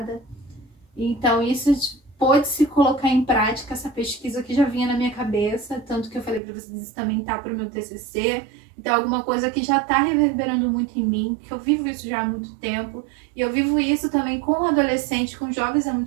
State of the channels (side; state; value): left; drops out; at 6.4 s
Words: Então, isso pôde se colocar em prática, essa pesquisa que já vinha na minha cabeça, tanto que eu falei para vocês, isso também tá para o meu TCC. Então, alguma coisa que já está reverberando muito em mim, que eu vivo isso já há muito tempo. E eu vivo isso também com adolescentes, com jovens há